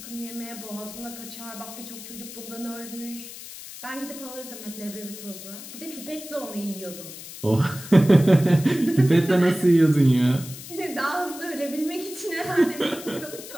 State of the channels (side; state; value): left; noise; hiss, 13 dB below the sound